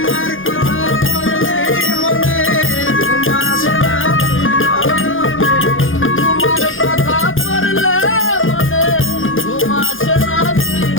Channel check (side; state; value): right; late; 0.58 ms